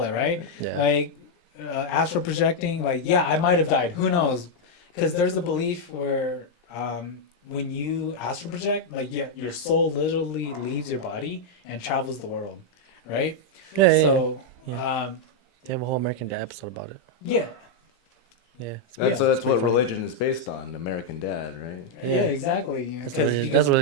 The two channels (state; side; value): late; right; 17 ms